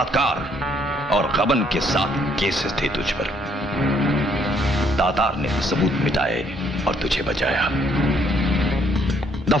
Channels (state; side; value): normal; both; correlation 0.67